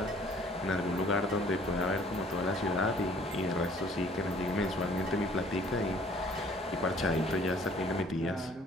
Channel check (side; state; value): both; normal; correlation 0.56